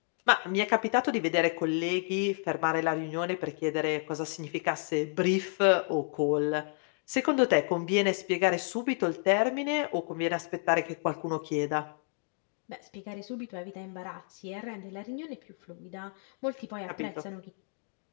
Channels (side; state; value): right; silent; 57 dB below the other